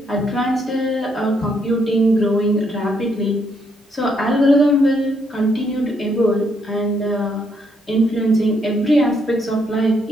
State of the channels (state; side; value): normal; both; correlation 0.74